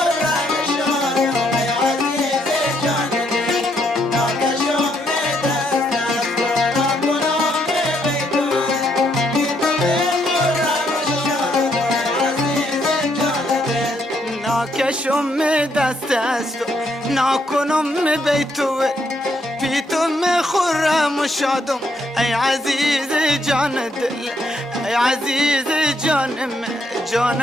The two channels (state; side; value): normal; both; correlation 0.74